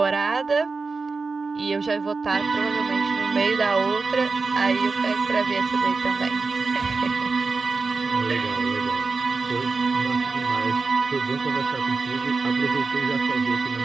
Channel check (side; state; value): left; quieter; 4.2 dB